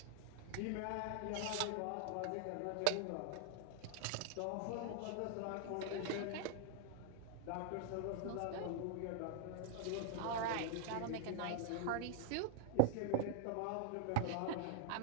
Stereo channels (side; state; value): both; different; correlation -0.01